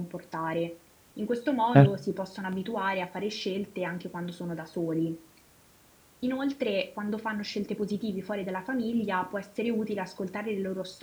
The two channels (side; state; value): both; identical; correlation 1.00